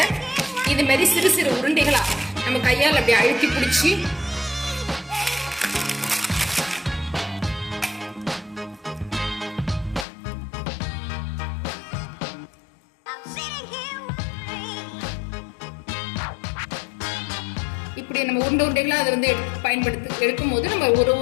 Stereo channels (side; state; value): right; drops out; at 10.1 s